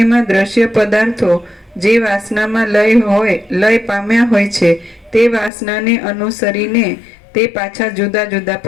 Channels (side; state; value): right; drops out; at 5.5 s